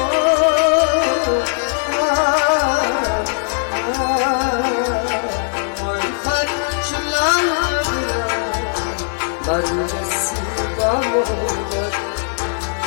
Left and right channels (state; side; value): silent; right; digital silence